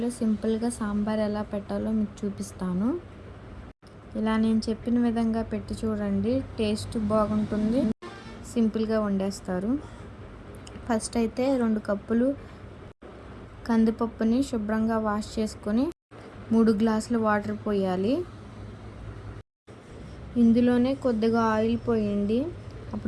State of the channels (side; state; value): both; identical; correlation 1.00